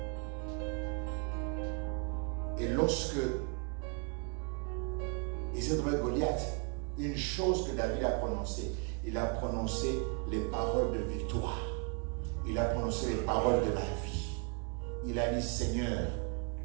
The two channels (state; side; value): quieter; left; 33.7 dB